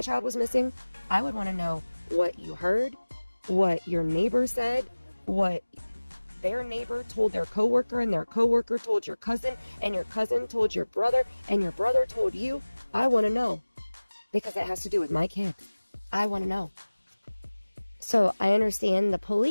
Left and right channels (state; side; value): inverted; both; correlation -1.00